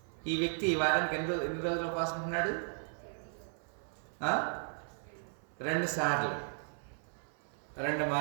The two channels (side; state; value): left; silent; 54 dB below the other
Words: ఈ వ్యక్తి వారానికి ఎన్ని రోజులు ఉపవాసం ఉంటున్నాడు? 2 సార్లు, 2